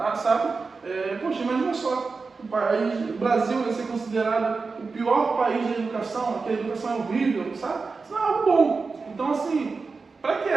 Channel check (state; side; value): quieter; left; 4.4 dB